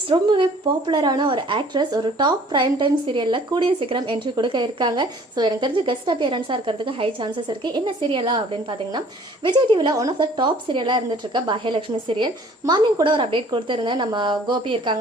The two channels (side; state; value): both; normal; correlation 0.54